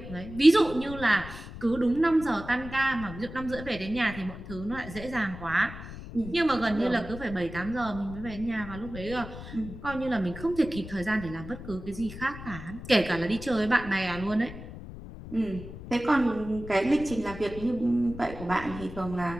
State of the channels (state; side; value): noise; left; rumble, 12 dB below the sound